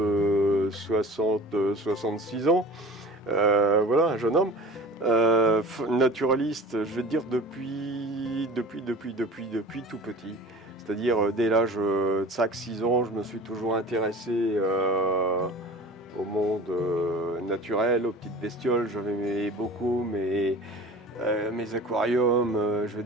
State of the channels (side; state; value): both; normal; correlation 0.40